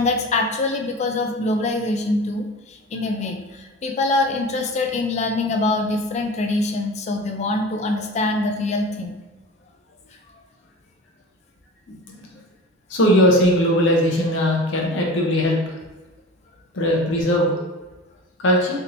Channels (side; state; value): both; normal; correlation 0.34